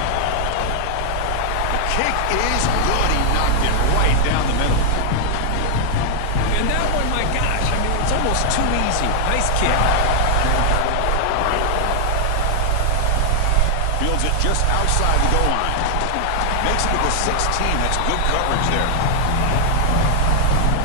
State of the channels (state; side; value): different; both; correlation 0.00